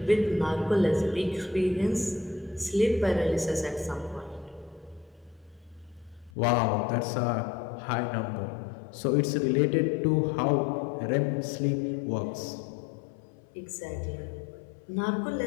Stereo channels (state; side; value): drops out; right; at 6.3 s